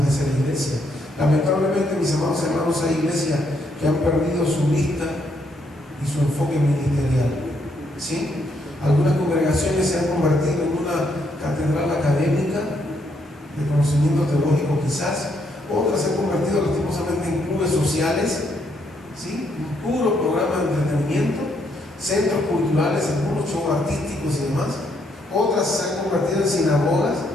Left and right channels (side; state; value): both; normal; correlation 0.74